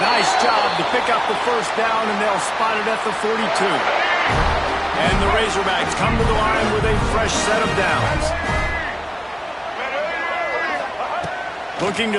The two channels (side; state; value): both; identical; correlation 1.00